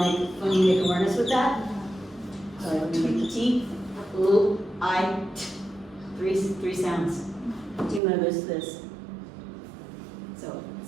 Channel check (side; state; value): left; drops out; at 8.0 s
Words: awareness with that, so we make the T, ooh, I, t, three sounds. Do you notice this? So,